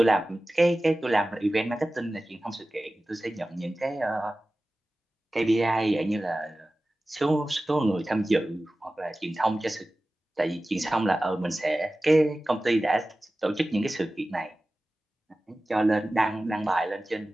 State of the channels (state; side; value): normal; both; correlation 0.96